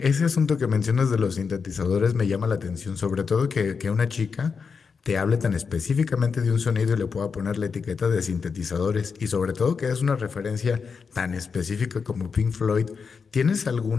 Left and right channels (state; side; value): quieter; right; 5.5 dB